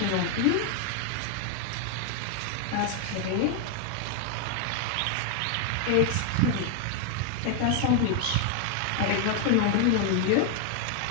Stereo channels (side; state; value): both; different; correlation 0.01